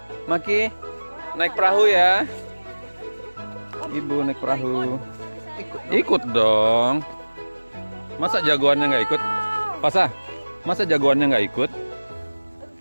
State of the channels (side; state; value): both; inverted; correlation -1.00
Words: Maki, naik perahu ya. Ibu naik perahu. Ikut dong. Masa jagoannya nggak ikut? Fasa, masa jagoannya nggak ikut?